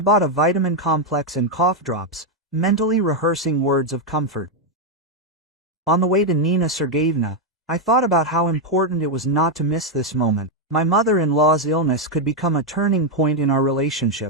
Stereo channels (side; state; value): both; normal; correlation 0.02